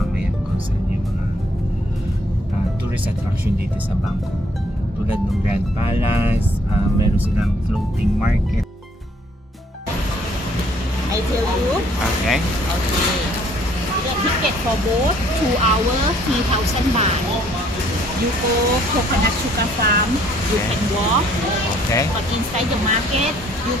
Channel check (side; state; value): both; normal; correlation 0.63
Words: kung saan yung mga tourist attraction dito sa Bangkok. Tulad ng Grand Palace, meron silang floating market. I tell you. Okay. Okay. The ticket for boat 2 hours 3,000 baht. You go coconut sugar farm. You Okay. can walk. Okay. But inside the market, you